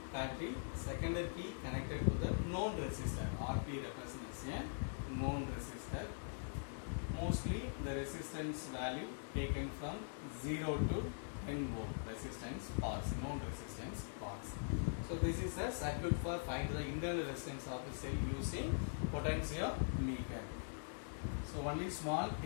battery, secondary key connected to the known resistor. RP represents a known resistor. Mostly the resistance value taken from 0 to 10 volt resistance parts, known resistance parts. So this is the circuit for find the internal resistance of a cell using potentiometer. So only small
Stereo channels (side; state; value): right; silent; digital silence